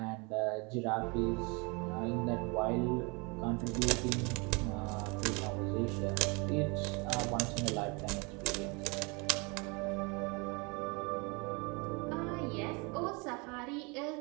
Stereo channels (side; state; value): left; quieter; 29.7 dB